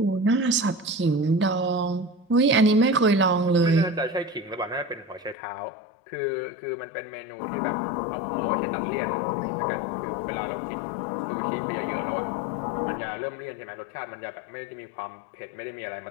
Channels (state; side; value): drops out; right; at 5.4 s